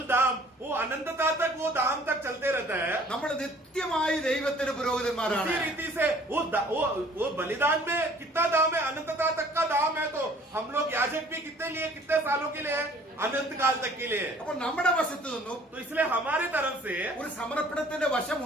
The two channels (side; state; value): both; normal; correlation 0.55